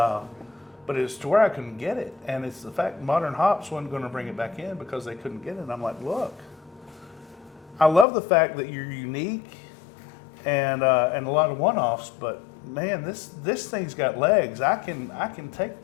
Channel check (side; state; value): right; drops out; at 8.1 s